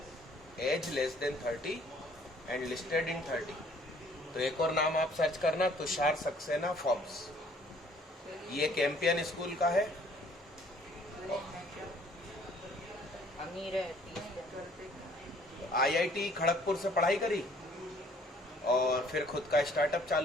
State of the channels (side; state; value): both; normal; correlation 0.59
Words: age less than 30 and listed in 30। तो एक और नाम आप सर्च करना, तुषार सक्सेना फोर्ब्स। ये कैंपियन स्कूल का है। अमीर है 30। IIT खड़गपुर से पढ़ाई करी और फिर खुद का स्टार्टअप